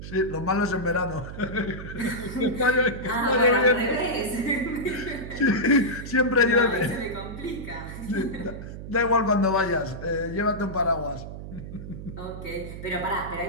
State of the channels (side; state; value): right; noise; hum, 10 dB below the sound